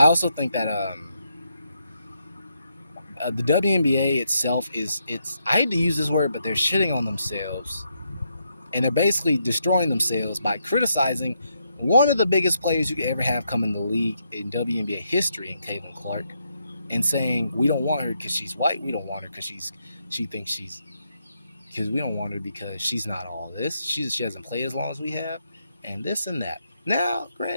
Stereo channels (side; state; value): both; inverted; correlation -0.79